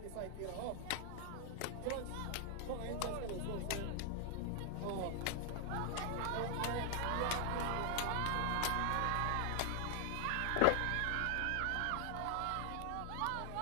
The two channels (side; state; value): both; different; correlation 0.00